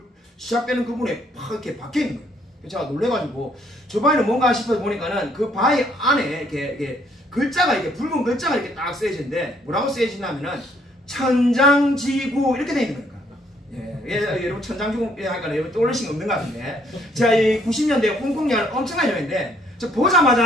시작되는 부분에 팍 이렇게 박혀 있는 거예요. 제가 놀래가지고 저 바위는 뭔가 싶어서 보니까는 그 바위 안에 이렇게 글자가 이렇게 붉은 글자가 이렇게 딱 쓰여지는데 뭐라고 쓰여지냐면은 천장지구 이렇게 돼 있는 거예요. 여러분 천장지구 하니까 여러분 떠올리신 거 없는 것 같은데 제가 이 90년대 홍콩 영화를 엄청나게 좋아했는데 저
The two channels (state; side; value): normal; both; correlation 0.66